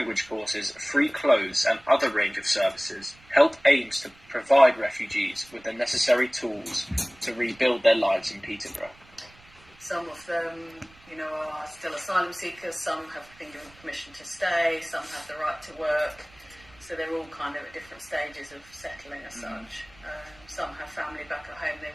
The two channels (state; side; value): noise; right; rumble, 26 dB below the sound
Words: courses, free clothes and other range of services, H.E.L.P aims to provide refugees with the necessary tools to rebuild their lives in Peterborough. Some of them, are still asylum seekers, some have been given permission to stay, some have the right to work, so they're all kind of at different stages of settling as such. Some have family back at home they